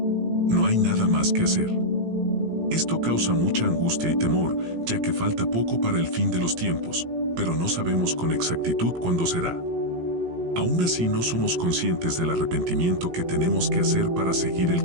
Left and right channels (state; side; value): late; left; 17 ms